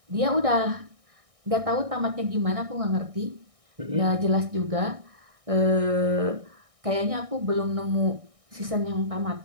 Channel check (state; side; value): late; left; 1.6 ms